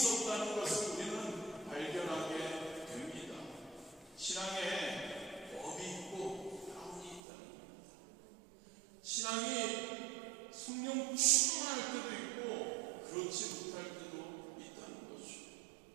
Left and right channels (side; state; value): left; drops out; at 7.2 s